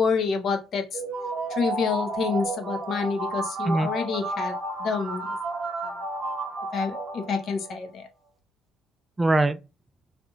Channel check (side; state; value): both; normal; correlation 0.74